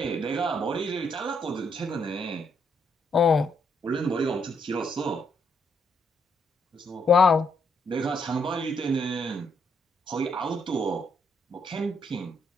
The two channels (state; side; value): normal; both; correlation 0.74